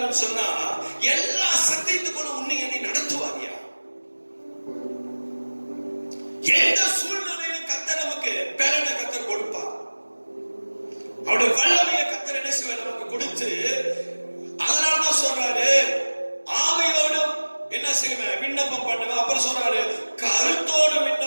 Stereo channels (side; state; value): both; inverted; correlation -1.00